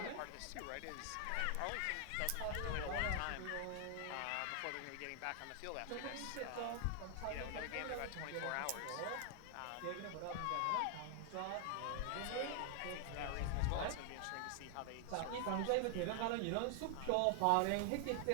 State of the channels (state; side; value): different; both; correlation 0.00